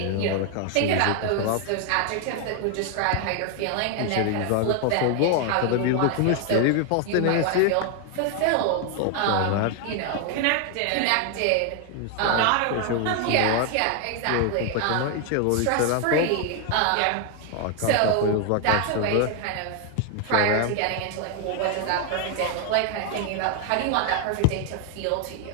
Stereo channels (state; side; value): different; both; correlation 0.01